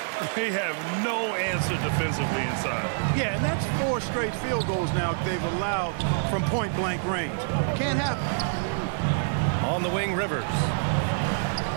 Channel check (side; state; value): left; silent; 60 dB below the other